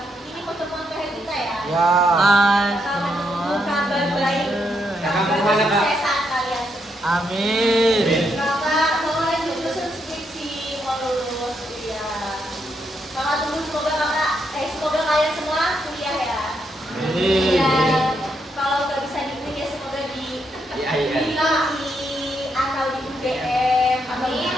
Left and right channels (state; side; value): normal; both; correlation 0.78